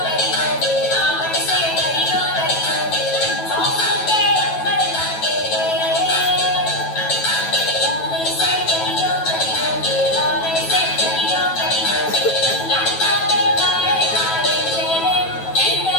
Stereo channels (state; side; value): late; right; 9.2 ms